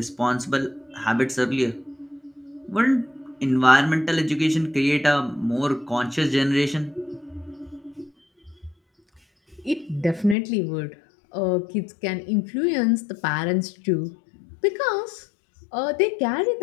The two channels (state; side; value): drops out; right; at 10.4 s